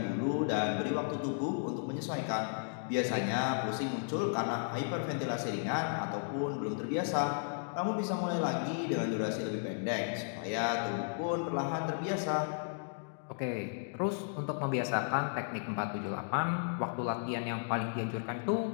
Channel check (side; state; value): right; silent; digital silence